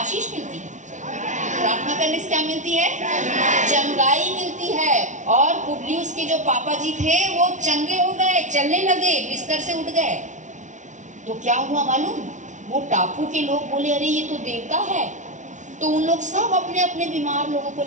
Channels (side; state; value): left; late; 0.36 ms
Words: मिलती है। प्रार्थना करने से क्या मिलती है, चंगाई मिलती है। और पुबलियुस के जो पापा जी थे वो चंगे हो गए, चलने लगे, बिस्तर से उठ गए। तो क्या हुआ मालूम, वो टापू के लोग बोले, अरे ये तो देवता है। तो उन लोग सब अपने अपने बीमार लोगों को